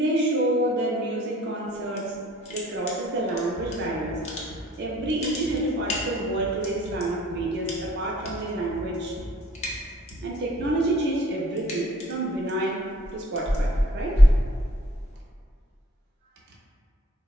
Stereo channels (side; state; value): both; normal; correlation 0.56